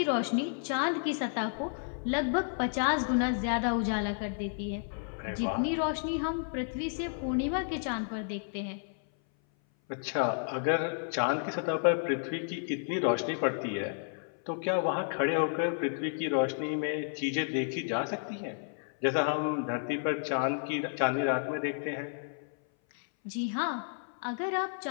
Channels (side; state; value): right; silent; 57 dB below the other